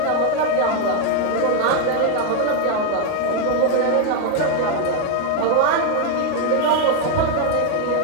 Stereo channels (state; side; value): different; both; correlation 0.01